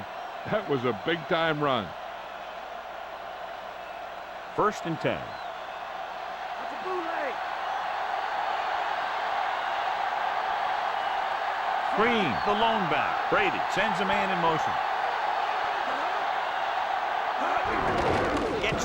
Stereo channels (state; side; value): identical; both; correlation 1.00